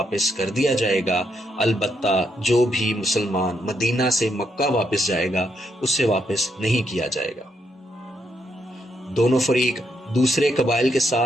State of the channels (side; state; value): both; normal; correlation 0.78